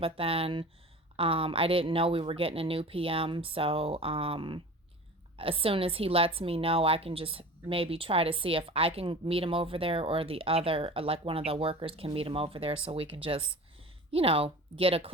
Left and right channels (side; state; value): both; normal; correlation 0.37